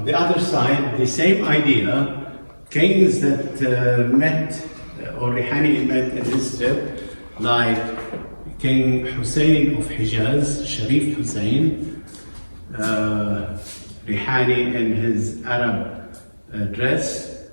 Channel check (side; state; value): both; inverted; correlation -1.00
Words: the same idea, kings that met, or Rihani met in his trip, like King Hussein of Hijaz, Sharif Hussein, Rihani in his Arab dress,